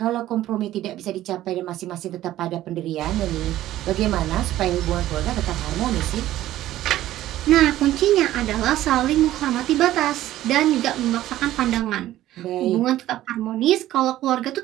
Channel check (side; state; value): left; quieter; 14.1 dB